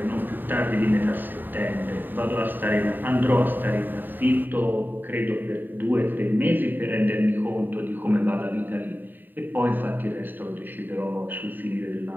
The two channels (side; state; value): left; late; 0.091 ms